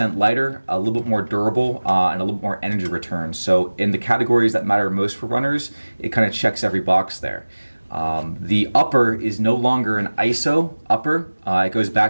lighter, a little bit more durable, and a little bit more energy return. So in the categories that matter most for runners, it kind of checks every box there. The upper is no longer an ISO upper. It goes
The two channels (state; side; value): inverted; both; correlation -1.00